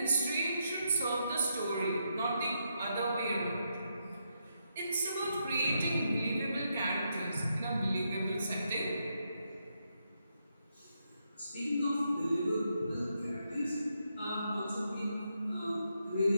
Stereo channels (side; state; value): both; inverted; correlation -0.80